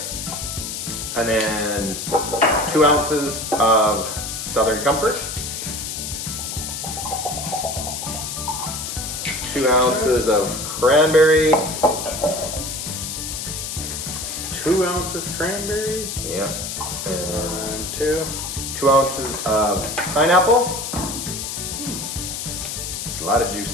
And then 2 ounces of Southern Comfort. 2 ounces of cranberry. 2 ounces cranberry. Yeah. And 2 ounces of pineapple. A lot of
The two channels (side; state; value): left; noise; hiss, 5 dB below the sound